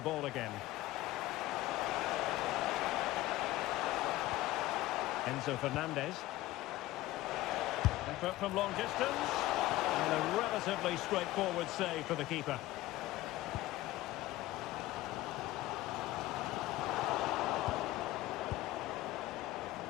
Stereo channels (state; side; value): quieter; right; 17.0 dB